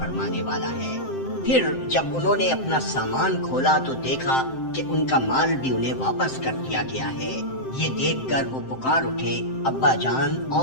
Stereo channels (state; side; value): late; right; 7.7 ms